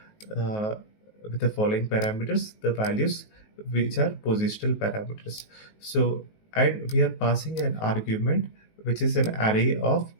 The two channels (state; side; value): late; right; 19 ms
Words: with the following parameters, the values, which are positional parameters. So, and we are passing an argument which is an array of